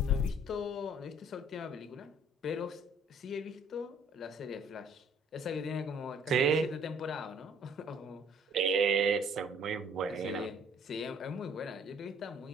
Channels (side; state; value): both; normal; correlation 0.59